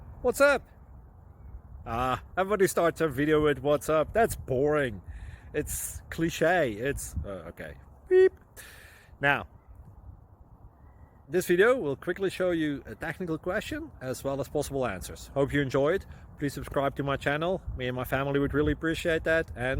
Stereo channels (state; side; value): identical; both; correlation 1.00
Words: What's up? Everybody starts a video with what's up. That's boring. It's cliche. It's okay. Beep. Now, this video will quickly show you a technical question as well as possible answers. Hope you enjoyed. Please subscribe to my channel. Me and my family would really appreciate that,